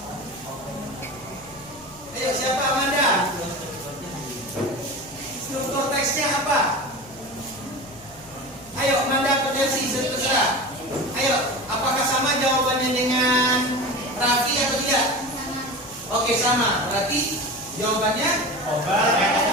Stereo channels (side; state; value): right; noise; hum, 25 dB below the sound